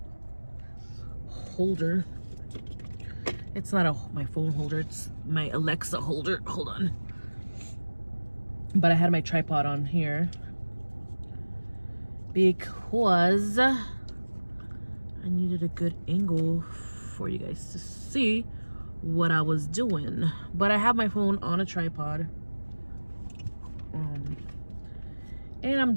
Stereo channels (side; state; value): both; inverted; correlation -1.00